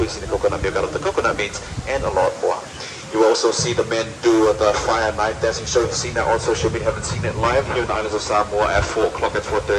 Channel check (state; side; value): identical; both; correlation 1.00